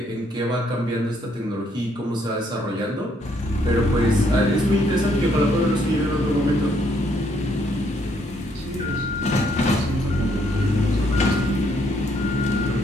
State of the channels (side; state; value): both; normal; correlation 0.70